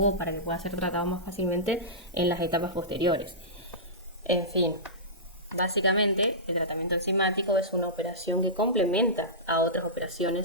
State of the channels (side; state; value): both; normal; correlation -0.18